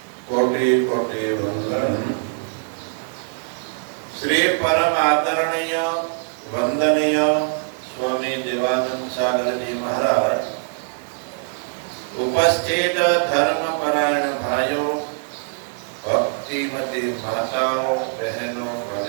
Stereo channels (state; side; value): silent; left; 64 dB below the other